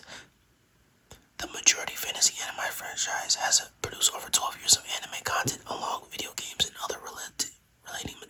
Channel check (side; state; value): both; identical; correlation 1.00